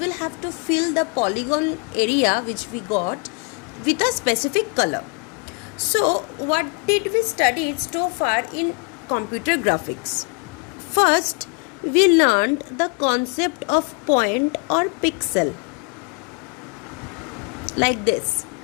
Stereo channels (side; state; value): right; quieter; 34.1 dB